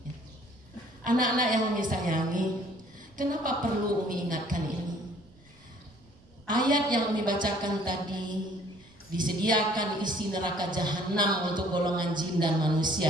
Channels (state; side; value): noise; right; rumble, 28 dB below the sound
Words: Ya. Anak-anak yang Umi sayangi, kenapa perlu Umi ingatkan ini? Ayat yang Umi bacakan tadi, disediakan isi neraka jahanam untuk golongan jin dan